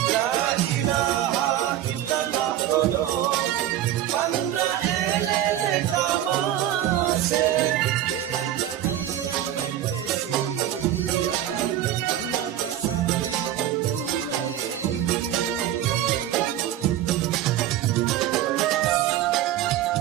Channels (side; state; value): left; quieter; 12.1 dB